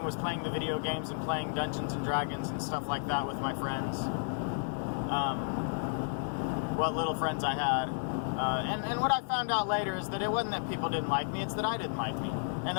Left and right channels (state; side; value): silent; right; digital silence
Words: was playing the video games and playing Dungeons and Dragons and stuff like that with my friends. What little friends I had. And what I found out later is that it wasn't that people didn't like me, it's that I didn't like me. And